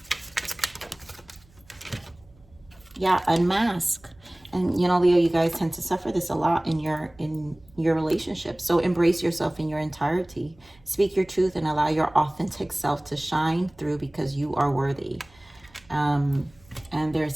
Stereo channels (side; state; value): right; noise; hum, 28 dB below the sound